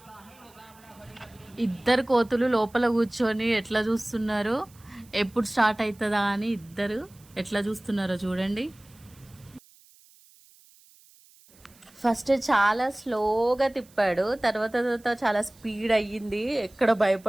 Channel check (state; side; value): noise; right; hiss, 27 dB below the sound